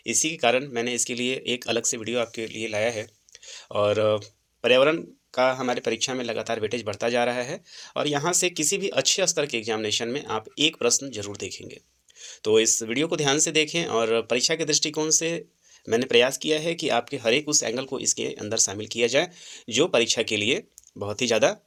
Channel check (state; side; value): identical; both; correlation 1.00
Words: इसी के कारण मैंने इसके लिए एक अलग से वीडियो आपके लिए लाया है। और पर्यावरण का हमारे परीक्षा में लगातार वेटेज बढ़ता जा रहा है और यहाँ से किसी भी अच्छे स्तर के एग्जामिनेशन में आप एक प्रश्न जरूर देखेंगे। तो इस वीडियो को ध्यान से देखें और परीक्षा के दृष्टिकोण से मैंने प्रयास किया है कि आपके हर एक उस एंगल को इसके अंदर शामिल किया जाए जो परीक्षा के लिए बहुत ही ज़्यादा